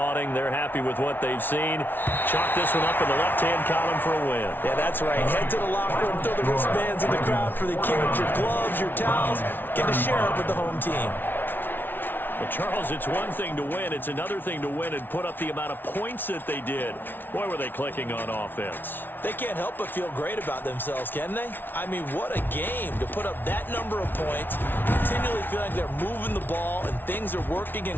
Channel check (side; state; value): right; late; 0.096 ms